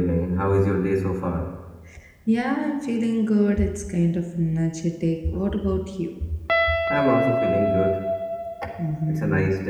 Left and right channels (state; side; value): identical; both; correlation 1.00